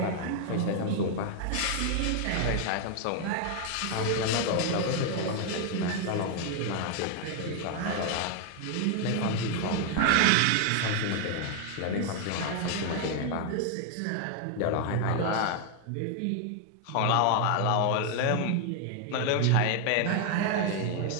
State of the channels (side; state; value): both; different; correlation 0.00